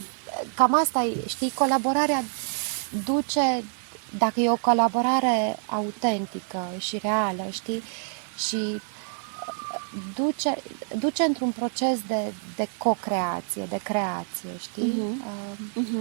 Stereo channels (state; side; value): silent; left; 56 dB below the other